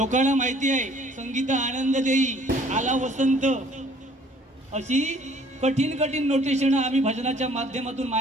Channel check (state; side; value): normal; both; correlation 0.56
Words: माहिती आहे संगीत आनंद देई आला वसंत, अशी कठीण कठीण नोटेशन आम्ही भजनाच्या माध्यमातून